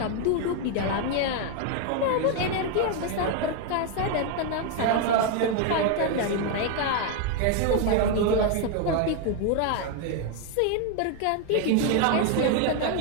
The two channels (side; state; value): both; different; correlation 0.01